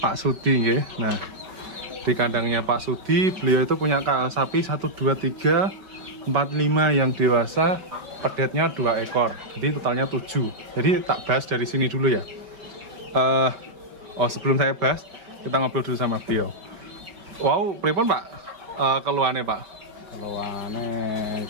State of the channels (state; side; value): late; left; 5.5 ms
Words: Sudi, ya. Nah, di kandangnya Pak Sudi, beliau itu punya sapi 1, 2, 3, 4, 5 yang dewasa, pedetnya 2 ekor. Jadi totalnya 7. Jadi tak bahas dari sini dulu ya. Sebelum saya bahas, kita ngobrol dulu sama beliau. Wow, pripun Pak? Keluhannya Pak? Keluhannya